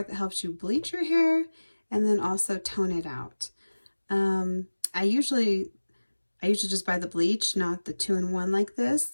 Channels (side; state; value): both; inverted; correlation -1.00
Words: that helps you bleach your hair and then also tone it out. Um, I usually just buy the bleach, not the 2-in-1 like